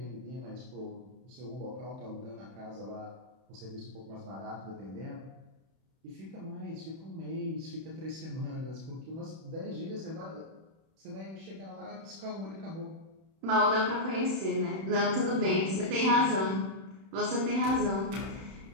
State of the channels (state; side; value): late; left; 31 ms